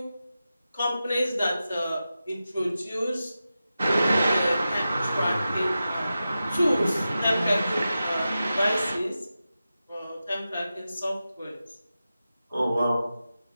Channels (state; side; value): inverted; both; correlation -0.92